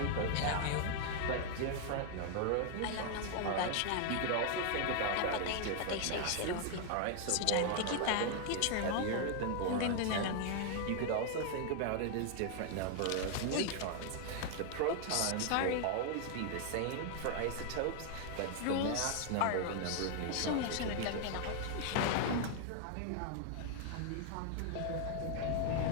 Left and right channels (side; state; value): both; different; correlation 0.00